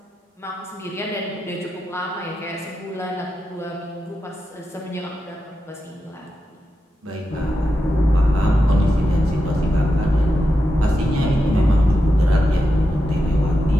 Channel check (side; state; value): both; normal; correlation 0.88